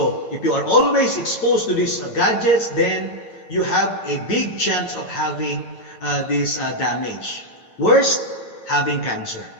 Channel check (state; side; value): late; right; 8.9 ms